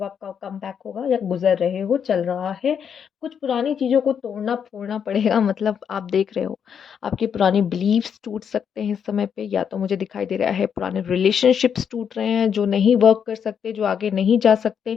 आपका कम बैक होगा, या गुजर रहे हो, चल रहा है। कुछ पुरानी चीज़ों को तोड़ना फोड़ना पड़ेगा। मतलब आप देख रहे हो आपकी पुरानी बिलीव्स टूट सकते हैं इस समय पे, या तो मुझे दिखाई दे रहा है पुराने रिलेशनशिप्स टूट रहे हैं जो नहीं वर्क कर सकते, जो आगे नहीं जा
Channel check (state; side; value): quieter; right; 7.6 dB